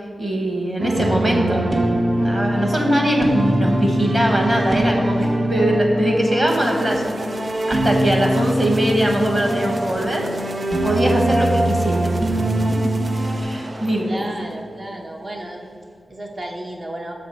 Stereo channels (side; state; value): both; normal; correlation 0.92